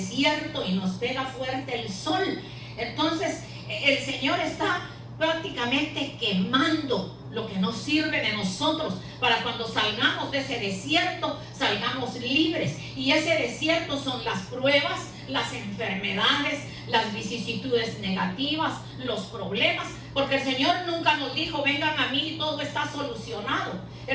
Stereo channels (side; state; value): both; identical; correlation 1.00